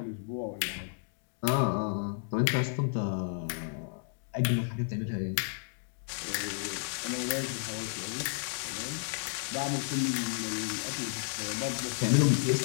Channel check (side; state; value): right; silent; digital silence